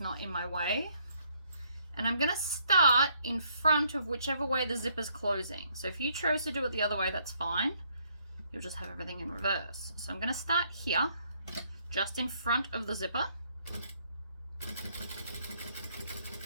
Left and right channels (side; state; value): both; inverted; correlation -0.69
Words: not in my way. And I'm gonna start in front of whichever way the zipper's closing. So if you chose to do it the other way, that's fine. You'll just have everything in reverse. So I'm gonna start here, just in front of the zipper.